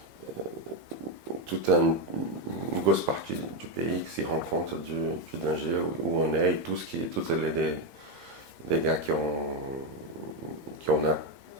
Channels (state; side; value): late; left; 8.7 ms